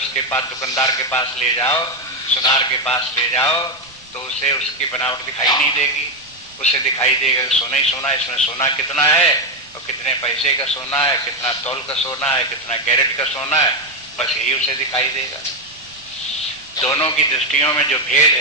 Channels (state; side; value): noise; right; rumble, 28 dB below the sound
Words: पास दुकानदार के पास ले जाओ, सुनार के पास ले जाओ, तो उसे उसकी बनावट दिखाई नहीं देगी। उसे दिखाई देगा सोना ही सोना, इसमें सोना कितना है और कितने पैसे का सोना है, कितना तौल का सोना है, कितना कैरेट का सोना है, बस यही उसे दिखाई देगा। दोनों की दृष्टियों में जो भेद